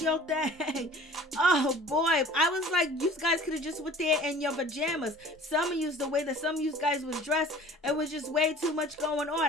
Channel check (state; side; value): normal; both; correlation 0.46